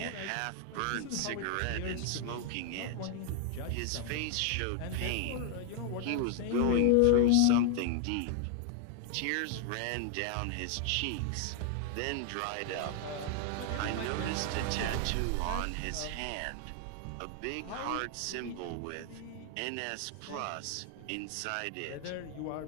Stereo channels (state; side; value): different; both; correlation 0.00